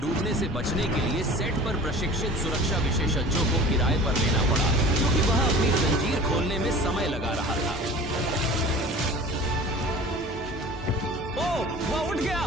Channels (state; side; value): normal; both; correlation 0.41